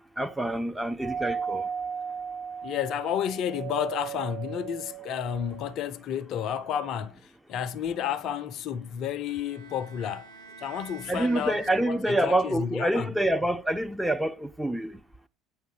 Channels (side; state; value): both; normal; correlation 0.71